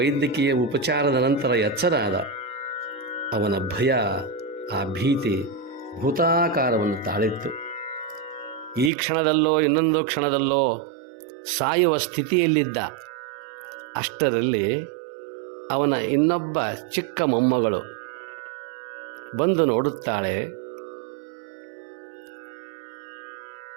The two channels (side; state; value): left; drops out; at 8.9 s